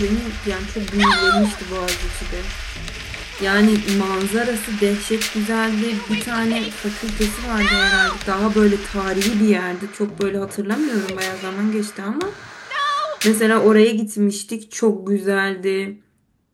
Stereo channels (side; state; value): both; identical; correlation 1.00